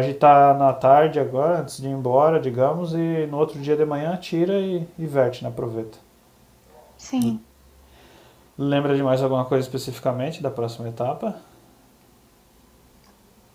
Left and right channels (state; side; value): identical; both; correlation 1.00